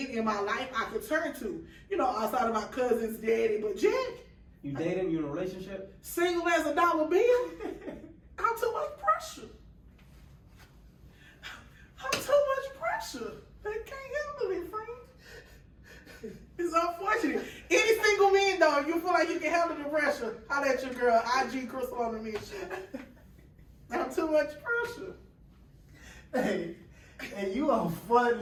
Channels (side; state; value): both; identical; correlation 1.00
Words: in my life I could turn to. You know, outside of my cousin's daddy. But Jack. you dating? You in a relationship? Single as a dollar bill. I'm too much pressure. I'm too much pressure. They can't handle it, friend. It's unfortunate. Any single man, though, you feel like you can handle the pressure, holler at your girl, IG Crystal on the mission. I'm too much pressure. Hey, you are